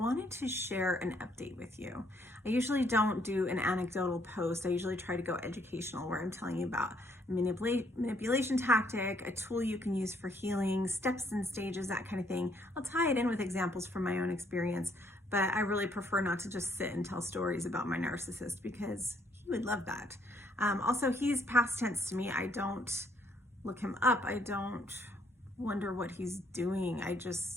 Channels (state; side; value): normal; both; correlation 0.68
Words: to share an update with you. I usually don't do an anecdotal post. I usually try to go educational, where I'm telling you about manipulation tactic, a tool you can use for healing, steps and stages, that kind of thing. I'll tie it in with examples from my own experience, but I really prefer not to just sit and tell stories about my narcissist because he would love that. Also, he's past tense to me. I don't look him up. I don't wonder what he's doing.